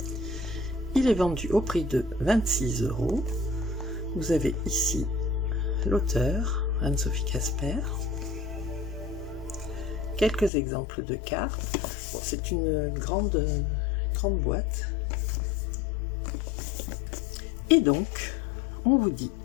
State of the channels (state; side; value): drops out; right; at 10.5 s